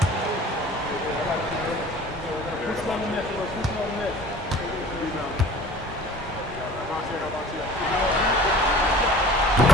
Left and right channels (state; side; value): normal; both; correlation 0.45